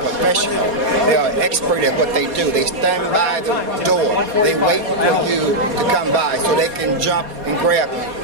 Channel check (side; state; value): left; late; 4.2 ms